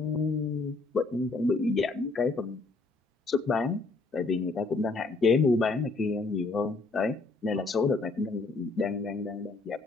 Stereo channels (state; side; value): quieter; right; 3.6 dB